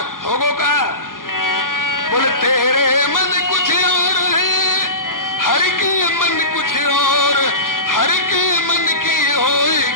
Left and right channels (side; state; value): right; late; 0.90 ms